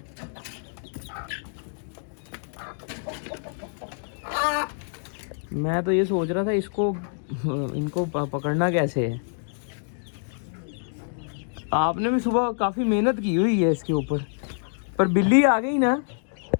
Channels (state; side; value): silent; right; digital silence